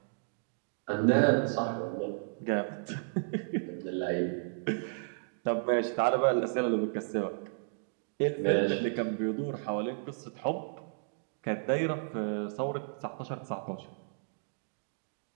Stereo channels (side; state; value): left; silent; digital silence